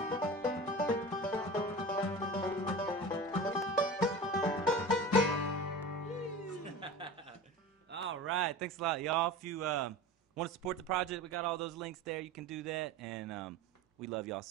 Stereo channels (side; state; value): both; normal; correlation 0.33